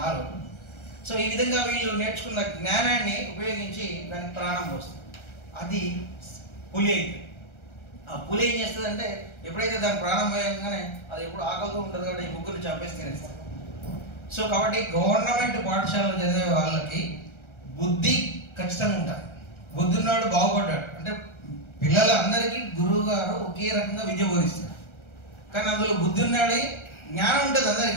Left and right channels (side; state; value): right; late; 1.3 ms